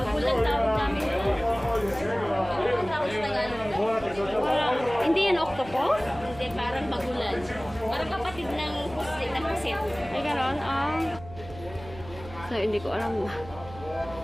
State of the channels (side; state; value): right; noise; hum, 16 dB below the sound